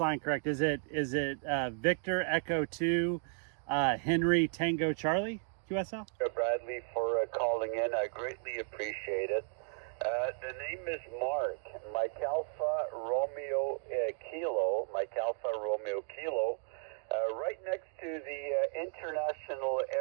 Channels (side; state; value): left; silent; 55 dB below the other